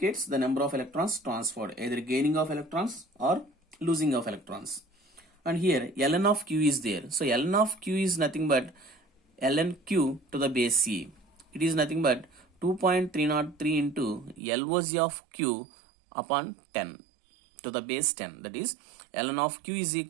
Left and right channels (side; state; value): left; drops out; at 14.4 s